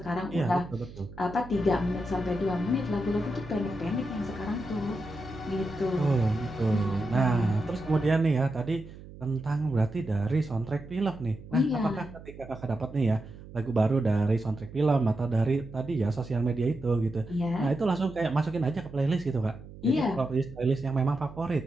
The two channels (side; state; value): right; noise; hum, 16 dB below the sound